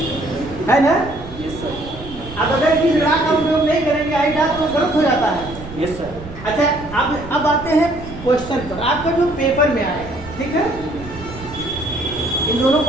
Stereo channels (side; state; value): right; noise; rumble, 14 dB below the sound